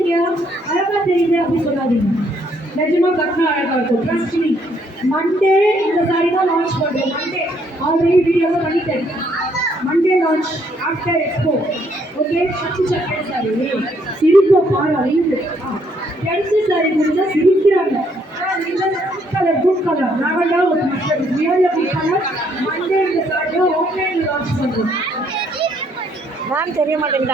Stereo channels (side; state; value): both; normal; correlation 0.69